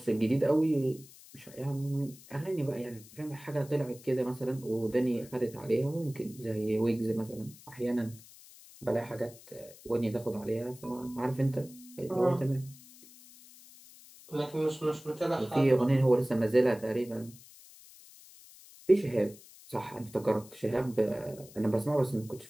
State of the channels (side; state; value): left; noise; hiss, 21 dB below the sound